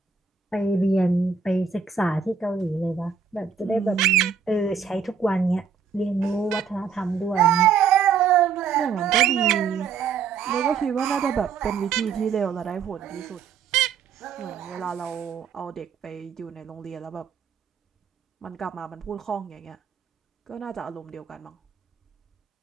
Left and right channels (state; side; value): quieter; left; 6.3 dB